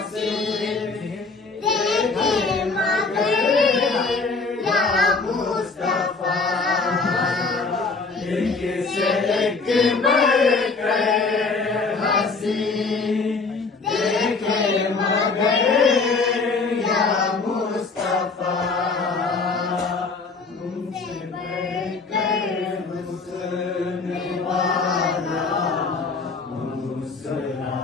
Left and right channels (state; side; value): quieter; right; 4.2 dB